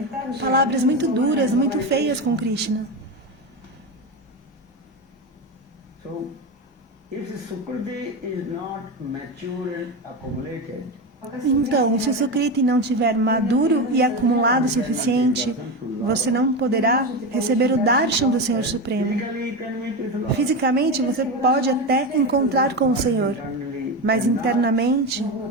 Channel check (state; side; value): normal; both; correlation 0.18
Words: так же. palavras muito duras, muito feias com Krishna. So, if the Sukriti is not mature and accumulated, Então, se o Sukriti não tiver maduro e acumulado o suficiente, você não poderá receber o darshan do Senhor Supremo. physically you can meet with Lord. Fisicamente, você pode até encontrar com o Senhor, Internally, mas internamente,